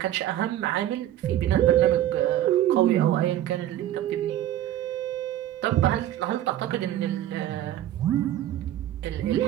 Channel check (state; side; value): quieter; left; 12.7 dB